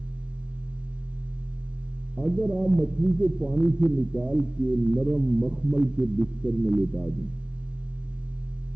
اگر آپ مچھلی کو پانی سے نکال کے نرم مخمل کے بستر میں لٹا دیں،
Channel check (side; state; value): left; late; 0.056 ms